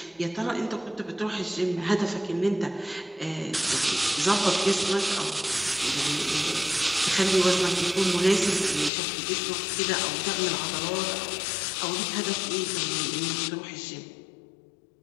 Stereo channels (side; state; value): right; drops out; at 8.9 s